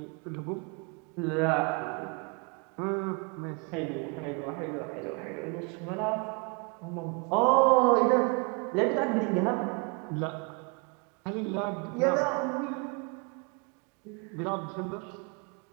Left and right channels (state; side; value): quieter; left; 33.1 dB